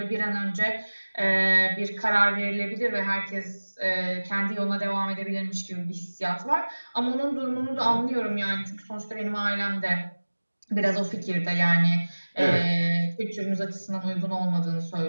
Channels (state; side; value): inverted; both; correlation -1.00